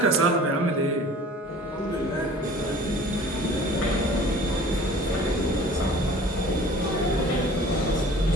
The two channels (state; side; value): normal; both; correlation 0.47